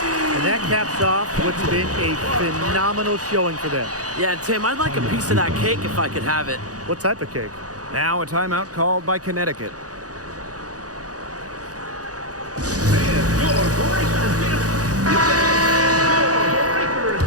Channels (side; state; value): left; late; 0.67 ms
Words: And that caps off what's been a phenomenal showing for them. Yeah, Tim, I'd like a piece of that cake if I could have it. What type of cake? Now a timeout called by Connecticut.